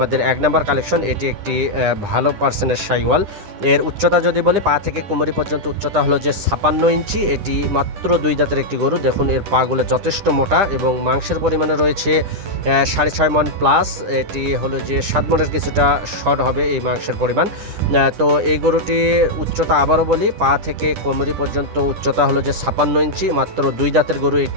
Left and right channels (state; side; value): late; left; 9.9 ms